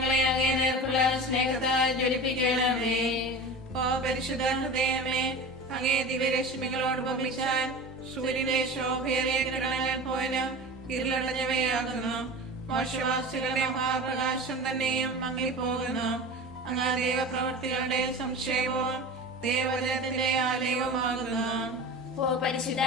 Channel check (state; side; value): normal; both; correlation 0.32